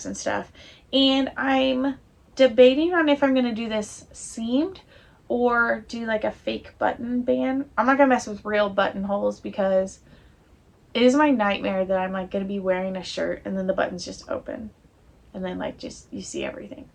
and stuff. And I'm debating on if I'm going to do this seamed or do like a fake button band. I'm not going to mess with real buttonholes because it is my nightmare that I'm like going to be wearing a shirt and then the buttons just open and then like just you see everything.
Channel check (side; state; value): both; identical; correlation 1.00